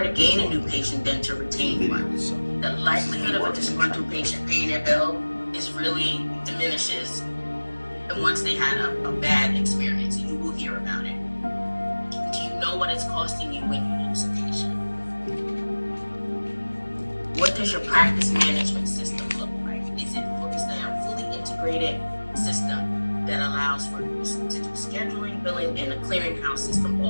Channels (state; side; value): inverted; both; correlation -1.00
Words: gain a enjoy new patient than to retain the video one. itself. The likelihood of a disgruntled patient paying their bill is really diminishes, and once they had a bad experience, you will hear about it. Do you know what it's costing you when you lose a patient? What does your practice management system look like? Is there a fully integrated system that allows for you to do scheduling, billing, and a clearinghouse system